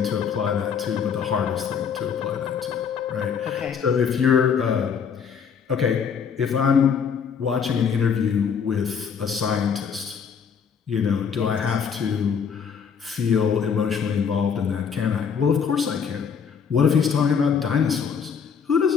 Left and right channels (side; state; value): right; quieter; 6.8 dB